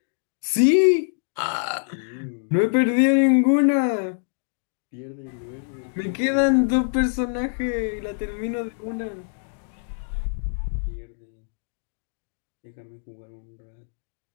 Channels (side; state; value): right; silent; digital silence